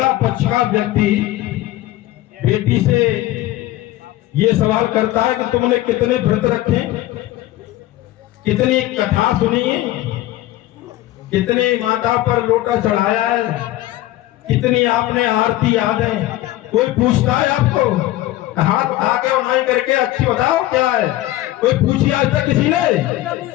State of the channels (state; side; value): quieter; right; 15.7 dB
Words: पक्ष का व्यक्ति बेटी से ये सवाल करता है कि तुमने कितने व्रत रखे, कितनी कथा सुनी है, कितनी माता पर लोटा चढ़ाया है, कितनी आपने आरती याद है। कोई पूछता है आपको, हाथ आगे उठाई करके अच्छी बताओ क्या है, कोई पूछी आज तक किसी ने?